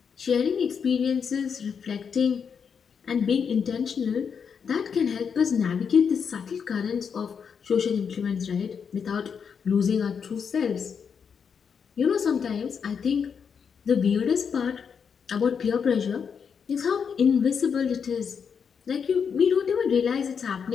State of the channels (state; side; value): quieter; right; 6.6 dB